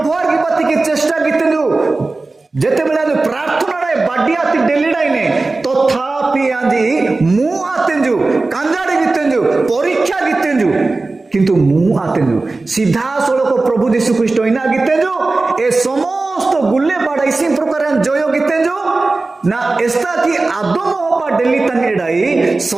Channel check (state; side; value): quieter; left; 3.4 dB